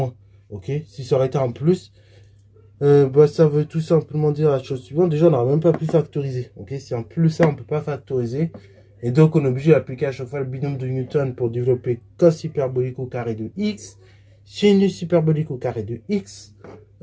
Ok, si ça aurait été en plus, bah, ça veut tout simplement dire la chose suivante. Déjà, on n'aurait même pas pu factoriser. Ok, si en plus ça, on ne peut pas factoriser. Et donc, on est obligé d'appliquer à chaque fois le binôme de Newton pour développer cos hyperbolique au carré de x, sinus hyperbolique au carré de x.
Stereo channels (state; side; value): identical; both; correlation 1.00